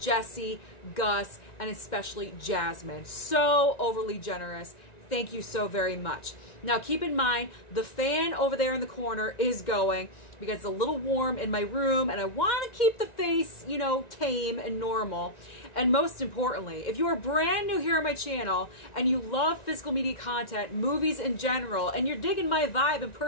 Gus, and especially Jasmine. So overly generous. Thank you so very much. Now keep in mind, the fan over there in the corner is going because it's a little warm in my room and I want to keep the face, you know, tame and normal. And most importantly, if you are brand new here on my channel and you love physical media content, movies in general, and you're digging my vibe and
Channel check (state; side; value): late; right; 1.9 ms